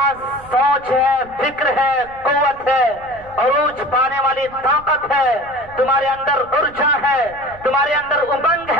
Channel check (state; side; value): noise; right; rumble, 22 dB below the sound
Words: سوچ ہے، فکر ہے، قوت ہے، عروج پانے والی طاقت ہے، تمہارے اندر ارجا ہے، تمہارے اندر امنگ